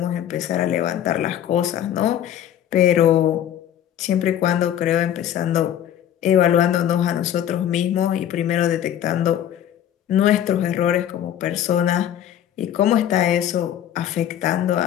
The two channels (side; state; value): right; quieter; 10.7 dB